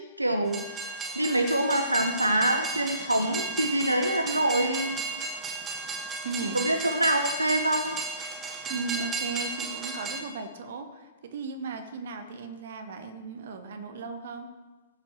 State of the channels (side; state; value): both; inverted; correlation -0.61